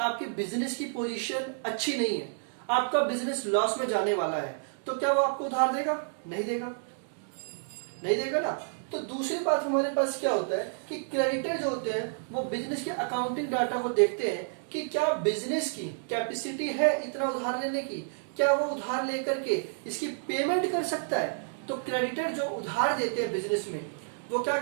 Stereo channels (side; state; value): left; silent; digital silence